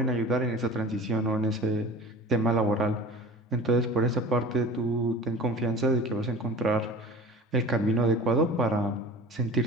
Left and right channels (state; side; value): normal; both; correlation 0.38